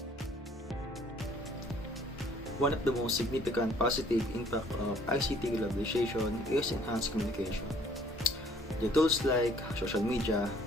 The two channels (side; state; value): both; normal; correlation 0.58